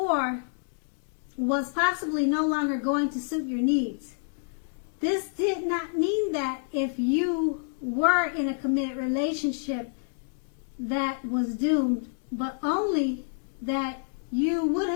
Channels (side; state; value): right; silent; digital silence